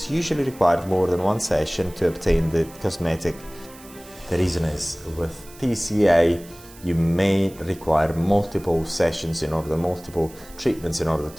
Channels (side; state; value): right; noise; hiss, 21 dB below the sound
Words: usually required more than one session to obtain the cosmetic. The reason is with TCA you may require multiple sessions multiple treatments in order